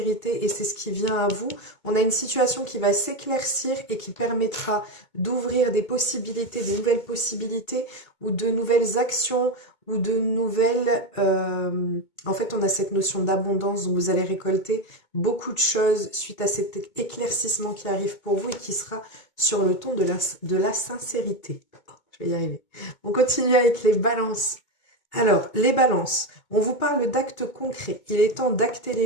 et c'est ce qui vient à vous. On a une situation qui va s'éclaircir et qui permettra d'ouvrir des possibilités, de nouvelles possibilités ou de nouvelles actions ou de nouvelles... En fait, on a cette notion d'abondance où vous allez récolter beaucoup de choses suite à cet éclaircissement qui arrive pour vous et qui sera sur le ton de la sincérité. Je vais y arriver. On continue avec les balances. Alors, les balances, on vous parle d'actes concrets. Il est temps d'acter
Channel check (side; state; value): right; late; 2.2 ms